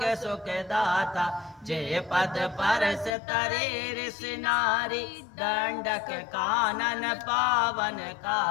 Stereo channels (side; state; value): right; drops out; at 3.2 s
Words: सुख दाता जय पद परस तरे ऋषि नारी दंडक कानन